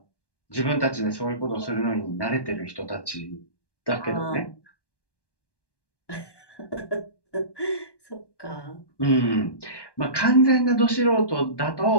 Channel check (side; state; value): right; late; 1.1 ms